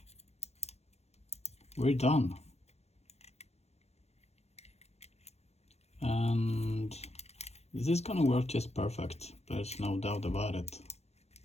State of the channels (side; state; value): right; late; 0.31 ms